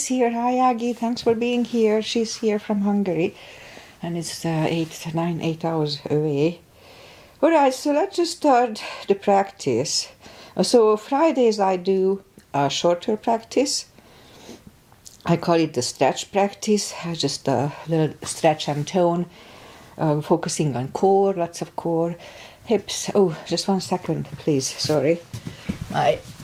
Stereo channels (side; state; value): both; identical; correlation 1.00